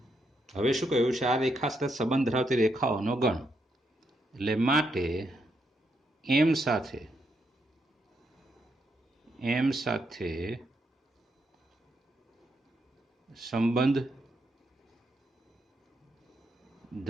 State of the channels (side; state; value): both; normal; correlation 0.79